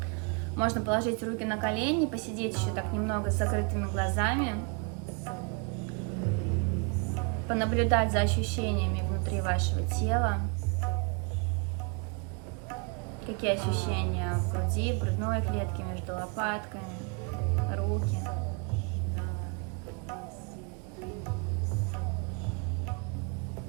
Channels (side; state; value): left; quieter; 33.9 dB